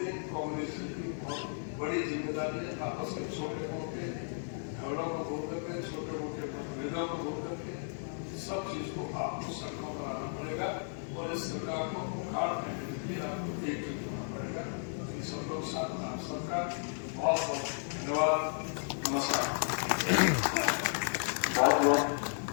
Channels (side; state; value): right; silent; digital silence